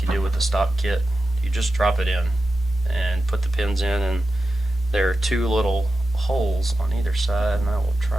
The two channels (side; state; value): both; normal; correlation 0.92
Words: you do with the stock kit. You just drop it in and put the pins in, and there are two little holes on either side, and I will